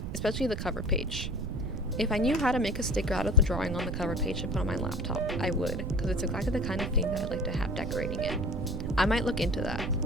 especially the cover page. If I knew how to make a sticker out of the drawing on the cover page to put on my laptop, I would, because it's exactly the kind of thing that I'd like to have decorating it. I might look into that.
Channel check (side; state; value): right; noise; rumble, 4 dB below the sound